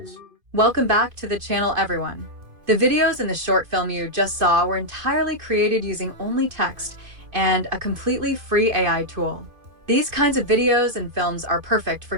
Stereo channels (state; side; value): late; left; 2.5 ms